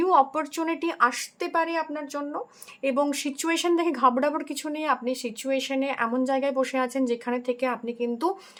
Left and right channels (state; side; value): identical; both; correlation 1.00